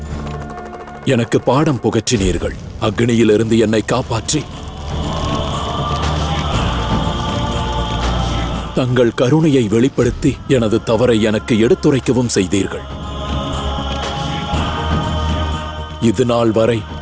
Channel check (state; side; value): identical; both; correlation 1.00